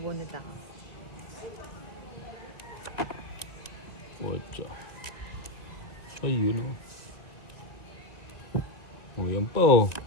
ako. Ocho. Ayun o. O, yan pa o.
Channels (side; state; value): right; late; 2.0 ms